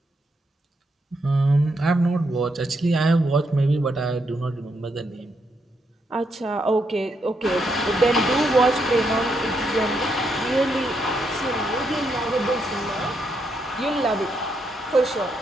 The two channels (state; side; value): normal; both; correlation 0.79